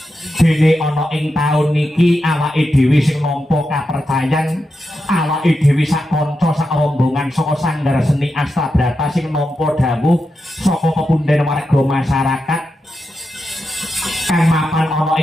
dene ana ing taun niki awake dhewe sing nampa kapercayan awake dhewe sak kanca sak rombongan saka Sanggar Seni Astabrata sing nampa dawuh saka pepunden warga masyarakat kang mapan ana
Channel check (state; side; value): normal; both; correlation 0.88